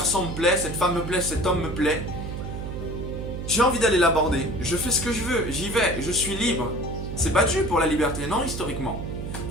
me plaît, cette femme me plaît, cet homme me plaît. J'ai envie d'aller l'aborder, je fais ce que je veux, j'y vais, je suis libre. C'est battu pour la liberté, non historiquement.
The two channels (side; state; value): right; noise; hum, 6 dB below the sound